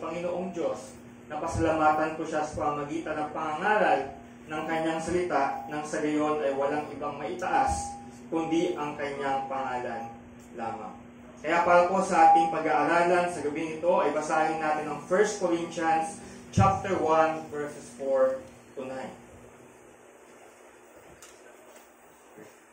Diyos na pasalamatan ko siya sa pamamagitan ng pangangaral ng kanyang salita nang sa gayon ay walang ibang maitaas kundi ang kanyang pangalan lamang. Kaya para po sa ating pag-aaralan sa gabi ito ay basahin natin ang 1 Corinthians chapter 1 verses 4 to 9.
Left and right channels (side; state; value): both; identical; correlation 1.00